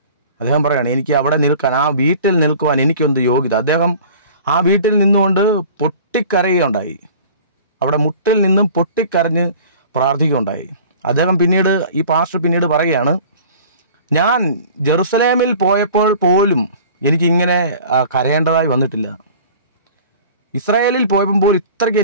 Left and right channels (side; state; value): both; inverted; correlation -0.45